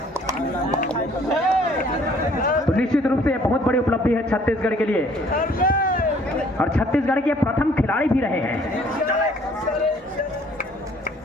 तो निश्चित रूप से बहुत बड़ी उपलब्धि है छत्तीसगढ़ के लिए और छत्तीसगढ़ के प्रथम खिलाड़ी भी रहे हैं।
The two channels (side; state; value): both; normal; correlation 0.58